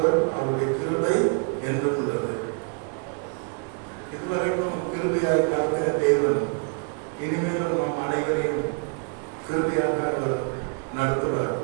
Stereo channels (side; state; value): left; quieter; 36.1 dB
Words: அவருடைய கிருபை என்றும் உள்ளது. இதுவரைக்கும் கிருபையாக நடத்தின தேவன் இனிமேலும் நம் அனைவரையும் கிருபையாக அவர் நடத்துவார்.